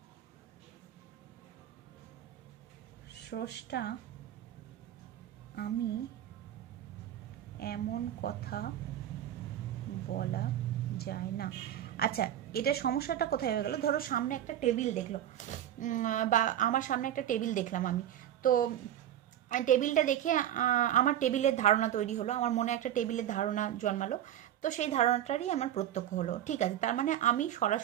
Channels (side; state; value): left; quieter; 11.5 dB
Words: স্রষ্টা আমি এমন কথা বলা যায় না। আচ্ছা, এটা সমস্যাটা কোথায় হয়ে গেল? ধরো সামনে একটা টেবিল দেখলো, বা আমার সামনে একটা টেবিল দেখলাম আমি, তো টেবিলটা দেখে আমার টেবিলের ধারণা তৈরি হলো, আমার মনে একটা টেবিলের ধারণা জন্মালো, তো সেই ধারণাটারই আমার প্রত্যক্ষ হলো। ঠিক আছে, তার মানে আমি